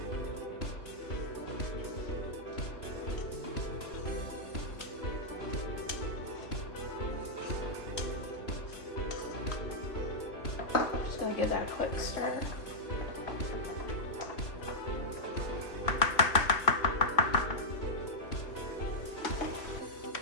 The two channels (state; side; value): late; right; 3.0 ms